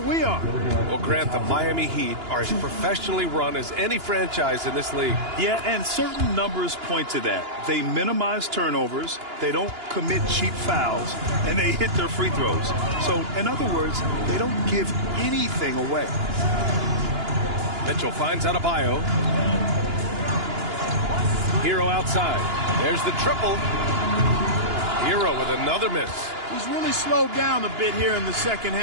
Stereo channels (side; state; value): left; late; 2.9 ms